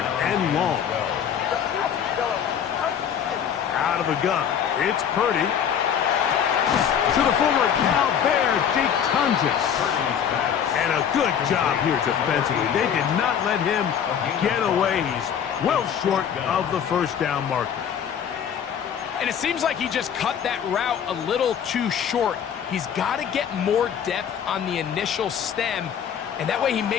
and long. Out of the gun. It's Purdy. To the former Cal Bear, Jake Tunges. And a good job here defensively. They did not let him get away. He's well short of the first down marker. And it seems like he just cut that route a little too short. He's got to get more depth on the initial stem, and that way he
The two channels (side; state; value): right; quieter; 8.4 dB